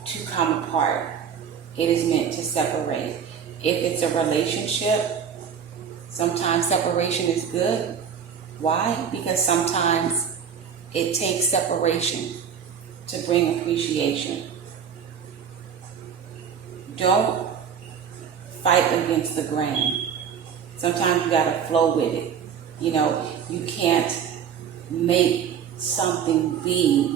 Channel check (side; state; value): left; quieter; 7.6 dB